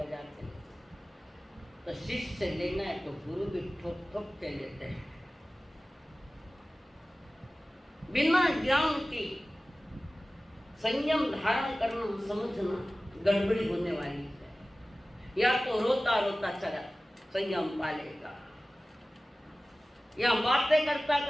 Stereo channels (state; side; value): normal; both; correlation 0.97